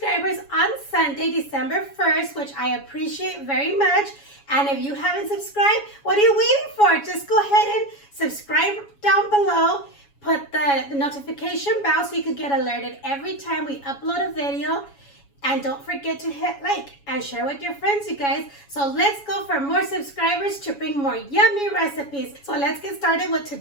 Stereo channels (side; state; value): right; late; 7.2 ms